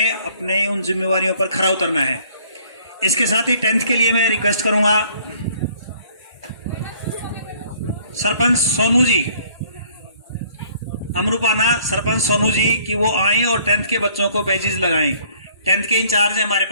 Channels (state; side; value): inverted; both; correlation -0.60